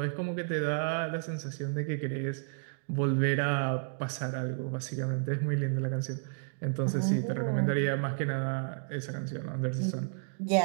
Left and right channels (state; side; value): silent; left; digital silence